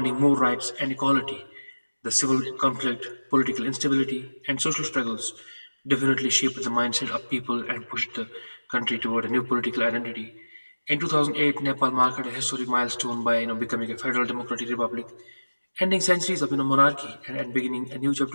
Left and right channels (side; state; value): both; inverted; correlation -1.00